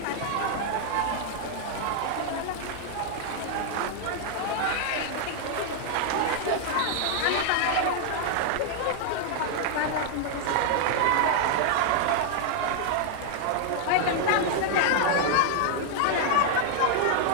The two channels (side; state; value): both; different; correlation 0.00